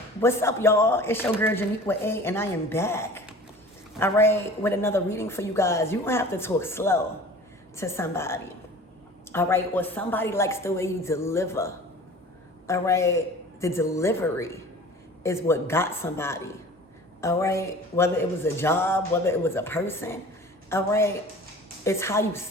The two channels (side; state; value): both; normal; correlation 0.42